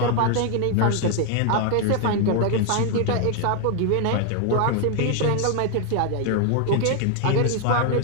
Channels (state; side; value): different; both; correlation 0.00